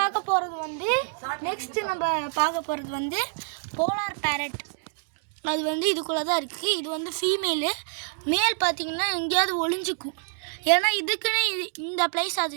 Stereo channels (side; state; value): left; silent; 60 dB below the other